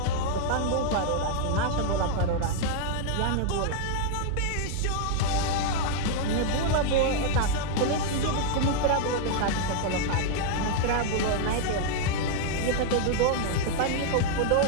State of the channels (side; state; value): both; different; correlation 0.00